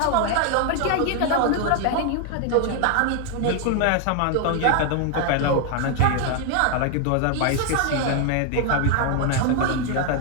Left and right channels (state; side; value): different; both; correlation 0.00